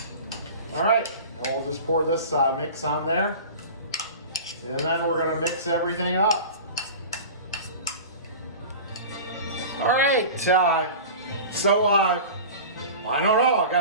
All right, and we'll just pour this mix on there. And then we're gonna mix everything up. All right, so I don't know, I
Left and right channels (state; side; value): inverted; both; correlation -0.35